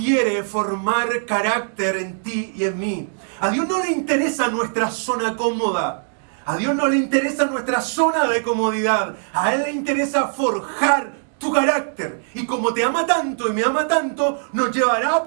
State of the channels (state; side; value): silent; left; digital silence